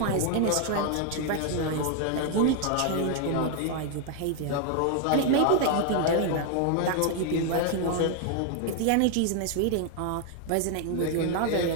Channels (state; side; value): different; both; correlation 0.00